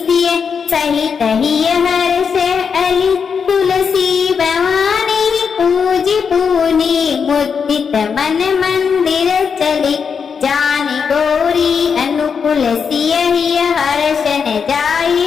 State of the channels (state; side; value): quieter; right; 6.3 dB